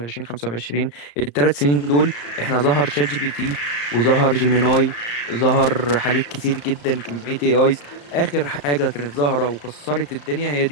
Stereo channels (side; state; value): right; late; 35 ms